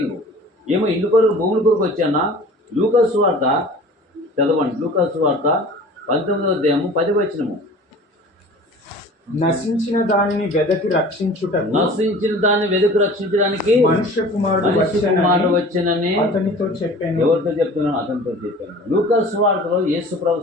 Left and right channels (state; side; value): normal; both; correlation 0.43